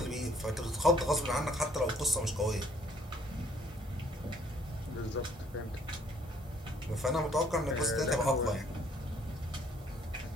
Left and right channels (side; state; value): both; normal; correlation 0.62